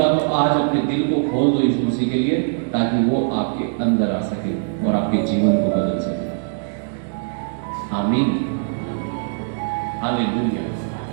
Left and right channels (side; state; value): left; silent; digital silence